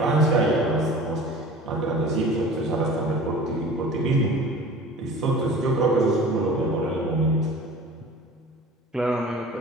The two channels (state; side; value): normal; both; correlation 0.41